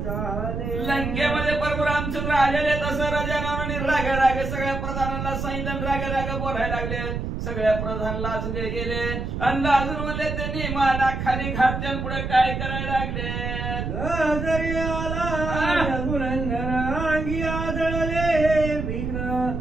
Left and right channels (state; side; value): noise; right; rumble, 4 dB below the sound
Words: लंकेमध्ये प्रभू रामचंद्र आलेले तसं राजा रावणाने रागे रागे सगळ्या प्रधानांना सांगितलं, रागे रागे बोलायला लागले. सगळ्या प्रधान लाजले गेले आणि लाजून म्हणले त्यांनी माना खाली घातल्या पुढे काय करायला लागले. जरी आला रघुनंदन अंगी आदळले विघ्न,